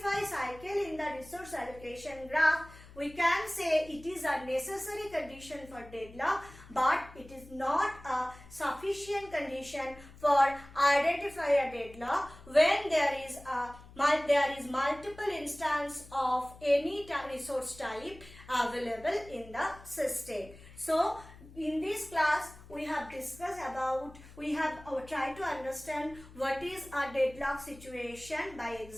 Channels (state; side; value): noise; left; hum, 20 dB below the sound